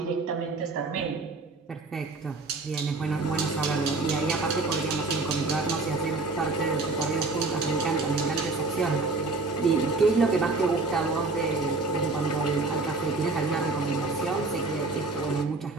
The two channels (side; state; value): left; quieter; 3.6 dB